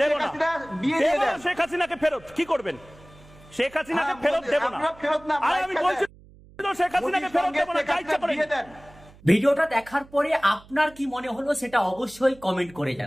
দেব না, দেব না শেখ হাসিনাকে ফেরত। কি করবেন? শেখ হাসিনাকে ফেরত দেব না। আর আমি বলছি শেখ হাসিনাকে ফেরত দেব না, যা ইচ্ছা করে। ভিডিওটা দেখার পরে আপনার কি মনে হলো সেটা অবশ্যই কমেন্ট করে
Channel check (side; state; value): right; noise; hum, 24 dB below the sound